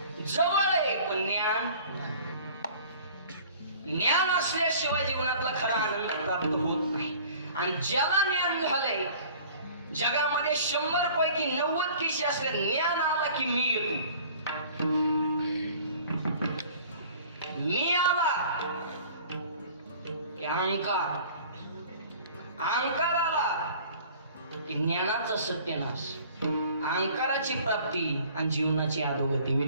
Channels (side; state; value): both; inverted; correlation -0.48